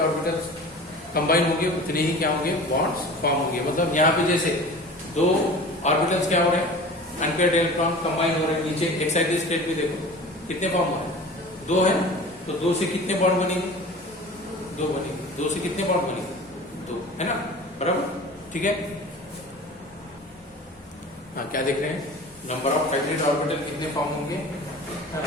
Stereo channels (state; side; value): normal; both; correlation 0.39